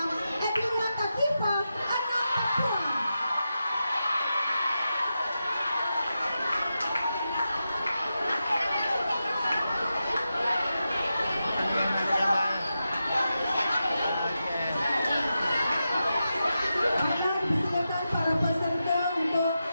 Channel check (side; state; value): both; inverted; correlation -0.89